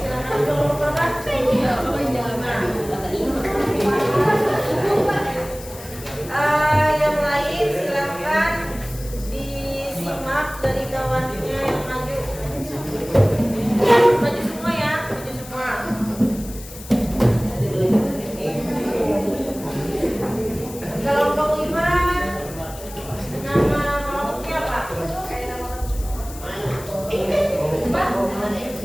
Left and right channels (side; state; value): left; noise; hiss, 16 dB below the sound